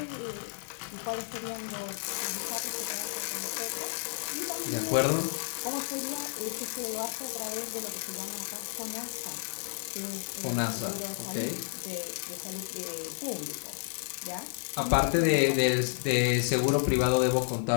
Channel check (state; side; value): silent; right; 57 dB below the other